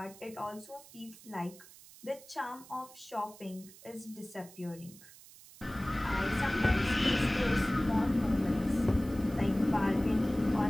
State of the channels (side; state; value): right; noise; hiss, 20 dB below the sound